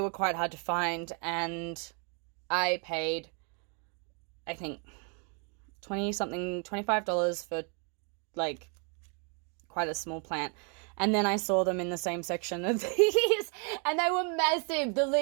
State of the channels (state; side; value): quieter; left; 38.1 dB